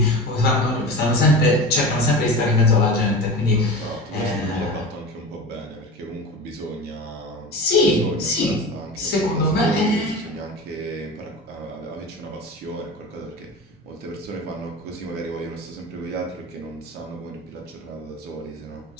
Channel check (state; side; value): normal; both; correlation 0.31